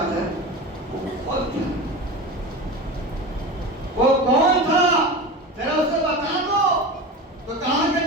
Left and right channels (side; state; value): both; normal; correlation 0.28